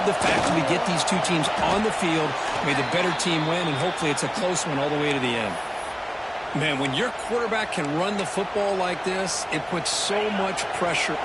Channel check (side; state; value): both; identical; correlation 1.00